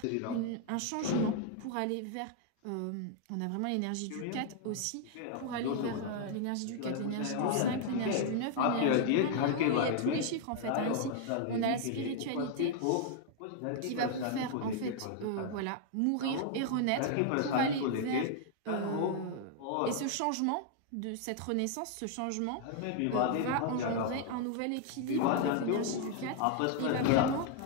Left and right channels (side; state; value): both; different; correlation 0.00